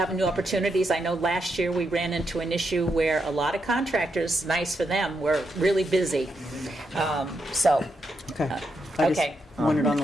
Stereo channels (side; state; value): both; normal; correlation 0.82